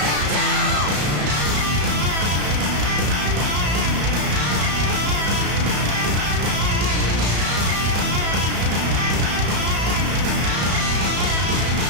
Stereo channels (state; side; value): late; left; 34 ms